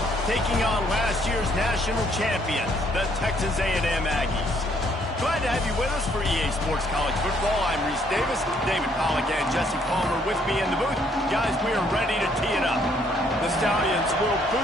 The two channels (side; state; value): both; normal; correlation 0.67